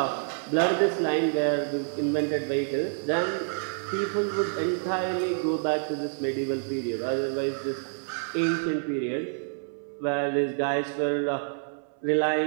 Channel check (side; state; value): left; silent; 59 dB below the other